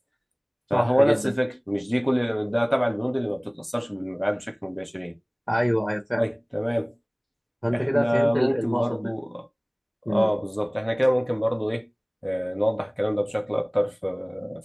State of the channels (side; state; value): both; identical; correlation 1.00